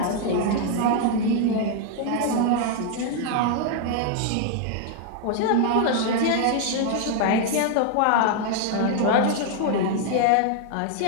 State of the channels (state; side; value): different; both; correlation 0.00